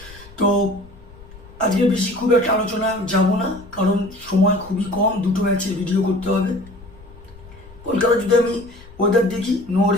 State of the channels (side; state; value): left; noise; rumble, 20 dB below the sound